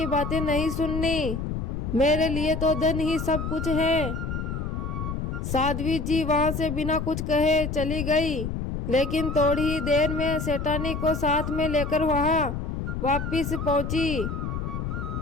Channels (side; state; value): left; noise; rumble, 3 dB below the sound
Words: बातें नहीं सुननी, मेरे लिए तो धन ही सब कुछ है। साध्वी जी वहां से बिना कुछ कहे चली गई, लेकिन थोड़ी ही देर में सेठानी को साथ में लेकर वहां वापिस पहुंची।